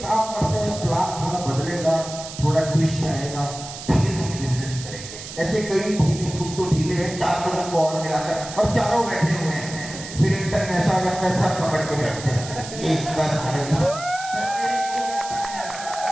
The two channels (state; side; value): noise; right; hiss, 11 dB below the sound